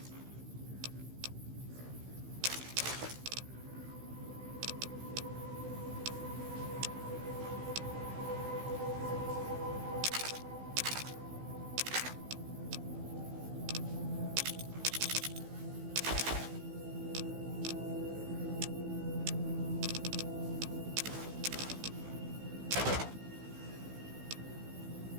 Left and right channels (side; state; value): left; late; 16 ms